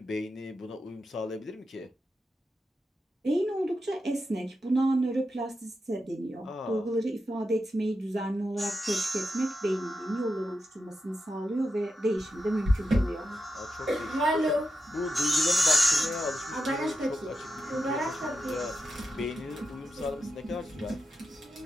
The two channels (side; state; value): both; normal; correlation 0.87